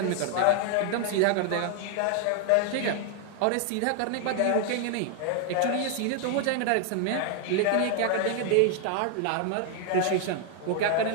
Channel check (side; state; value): both; different; correlation 0.00